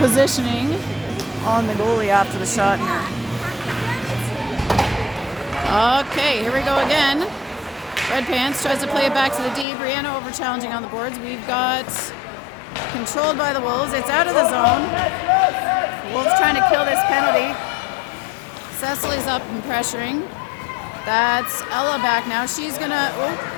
on the goalie after the shot here. Okay, here we go again. Red Pants tries to play it back to the D. Brianna over challenging on the boards. We've got controlled by the Wolves. It's out of the zone. Wolves trying to kill this penalty. Cecily's up and pressuring. That's Ella back now. She's gonna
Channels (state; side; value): drops out; right; at 9.7 s